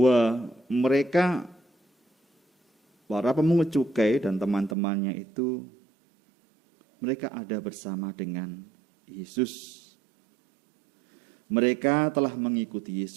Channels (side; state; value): left; drops out; at 4.8 s